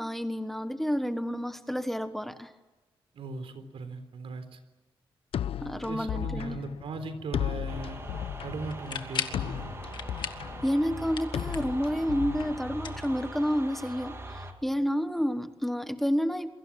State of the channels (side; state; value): both; normal; correlation 0.87